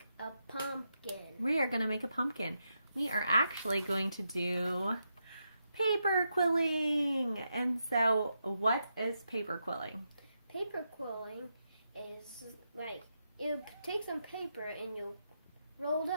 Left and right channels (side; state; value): both; inverted; correlation -0.84